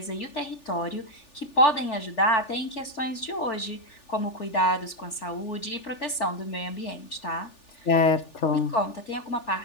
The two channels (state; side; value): late; right; 3.4 ms